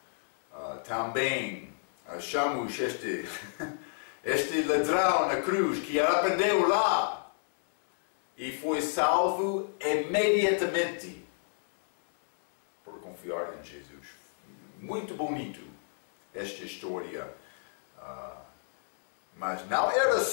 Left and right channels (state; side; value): silent; right; digital silence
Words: Também achamos este ladrão na cruz que arrependeu lá e foi salvo imediatamente por confiar em Jesus. Muito bonito esta história, mas não era